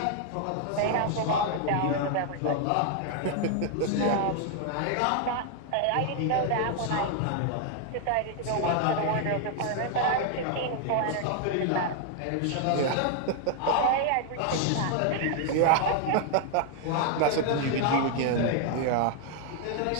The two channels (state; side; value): different; both; correlation 0.00